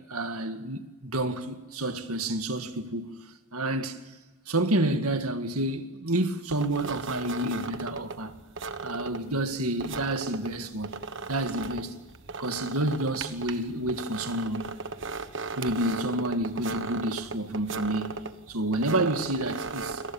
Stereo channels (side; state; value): both; normal; correlation 0.17